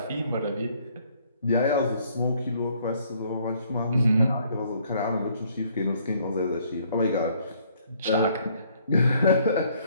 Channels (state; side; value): inverted; both; correlation -0.64